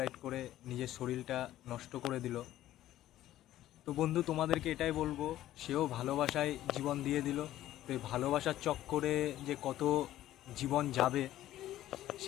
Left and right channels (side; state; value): right; quieter; 13.7 dB